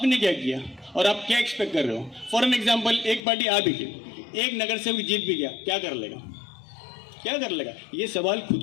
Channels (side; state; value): right; drops out; at 3.2 s